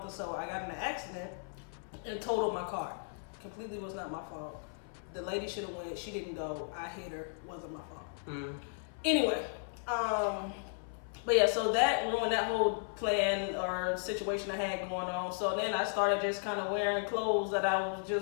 or so, I got in an accident and totaled my car. Completely was not my fault. The lady should have went. She didn't go. I hit her. Wasn't my fault. Anyway, but yeah, so that ruined that whole plan or situation I had going on. So then I started just kind of wearing clothes that I was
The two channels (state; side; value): silent; right; 54 dB below the other